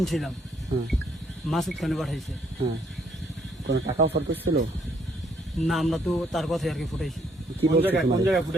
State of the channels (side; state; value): both; normal; correlation 0.68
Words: ছিলাম। হ্যাঁ মাসুদ খানে পাঠাইছে। হ্যাঁ কোনো টাকা অফার করছিল? না, আমরা তো তার কথাই আর কি ফুটাইছি। কি বলছে কোন তোমাদের? জায়গায়